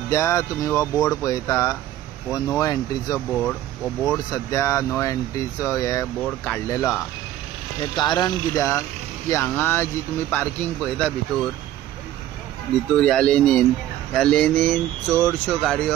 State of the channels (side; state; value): left; quieter; 13.2 dB